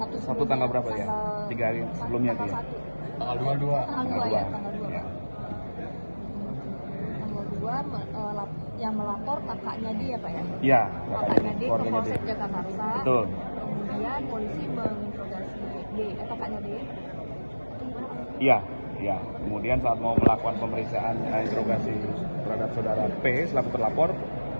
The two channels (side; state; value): both; inverted; correlation -1.00